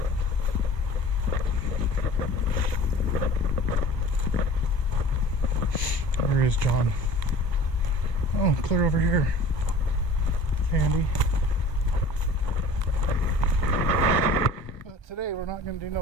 Where is John? Oh, clear over here. It's handy. But today we're not going to do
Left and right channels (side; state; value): right; late; 1.3 ms